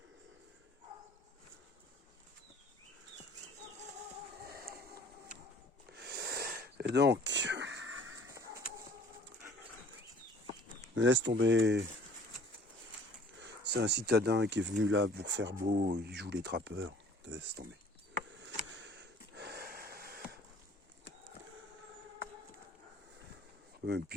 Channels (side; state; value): both; normal; correlation 0.51